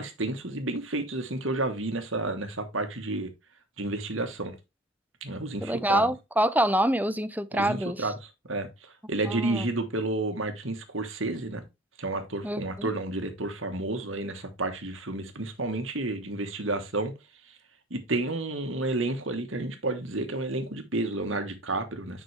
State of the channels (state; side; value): normal; both; correlation 0.40